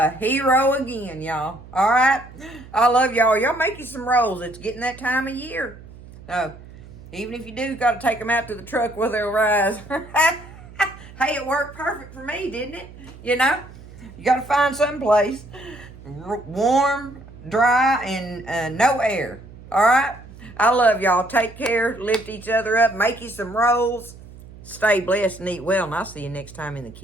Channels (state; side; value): noise; right; hum, 18 dB below the sound